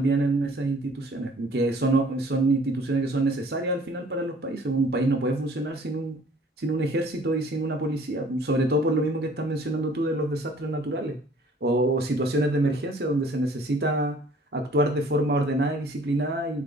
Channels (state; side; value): normal; both; correlation 0.54